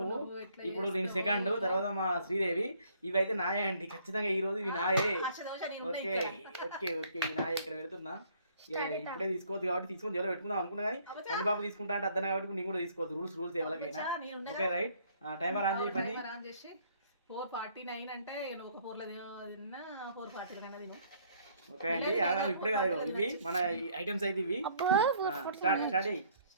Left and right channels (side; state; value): both; inverted; correlation -0.62